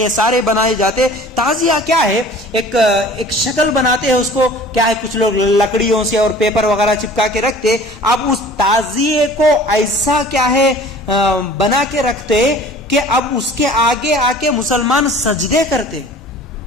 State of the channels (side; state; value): both; normal; correlation 0.46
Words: سارے بنائے جاتے. تعزیہ کیا ہے؟ ایک شکل بناتے ہیں اس کو کیا ہے کچھ لوگ لکڑیوں سے اور پیپر وغیرہ چپکا کے رکھتے. اب اس تعزیے کو ایسا کیا ہے بنا کے رکھتے کہ اب اس کے آگے آ کے مسلمان سجدے کرتے,